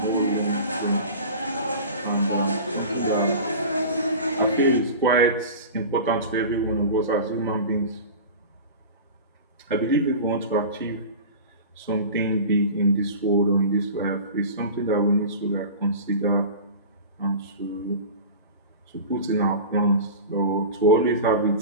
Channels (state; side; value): inverted; both; correlation -0.34